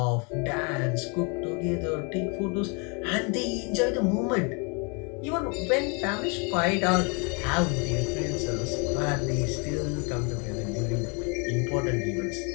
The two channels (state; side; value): quieter; right; 33.6 dB